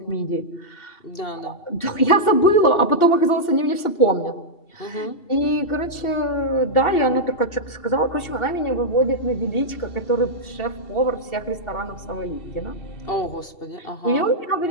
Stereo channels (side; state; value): right; late; 2.7 ms